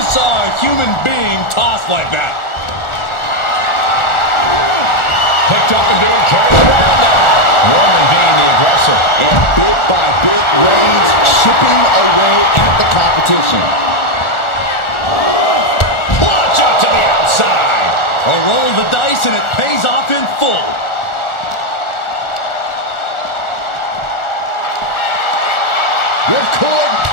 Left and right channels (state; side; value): late; right; 1.4 ms